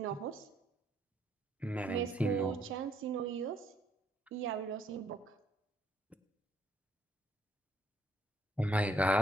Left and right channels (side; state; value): both; normal; correlation 0.69